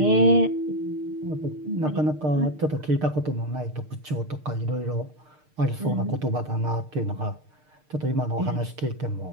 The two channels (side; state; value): left; late; 6.6 ms